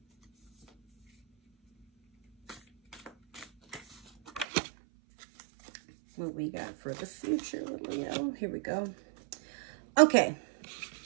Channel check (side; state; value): left; drops out; at 4.5 s